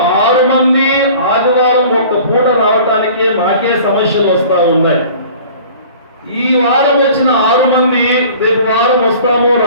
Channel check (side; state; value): both; inverted; correlation -0.46